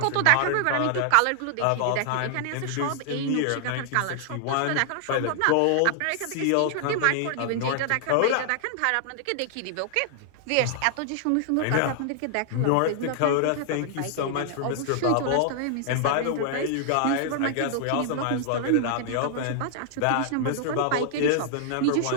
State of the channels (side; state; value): both; different; correlation 0.00